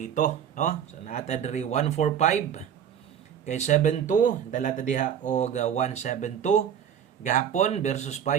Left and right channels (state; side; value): quieter; left; 8.8 dB